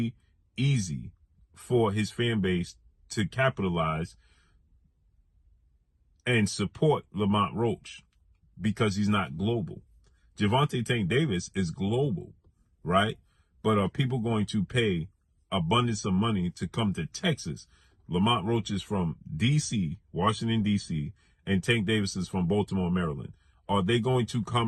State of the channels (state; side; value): identical; both; correlation 1.00